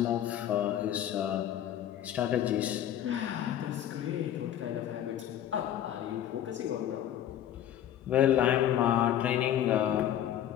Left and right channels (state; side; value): quieter; right; 11.2 dB